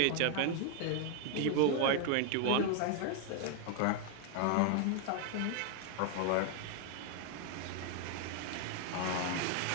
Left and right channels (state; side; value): different; both; correlation 0.00